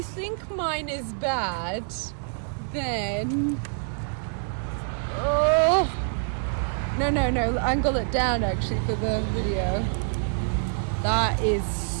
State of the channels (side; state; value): left; silent; digital silence